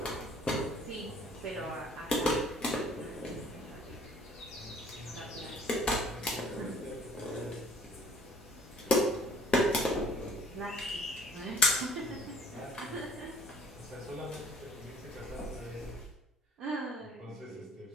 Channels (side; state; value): both; normal; correlation 0.55